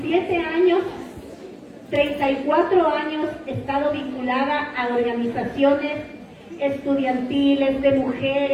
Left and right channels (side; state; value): both; identical; correlation 1.00